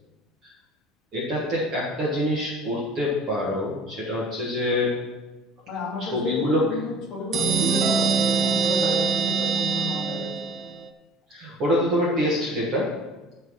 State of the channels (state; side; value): normal; both; correlation 0.47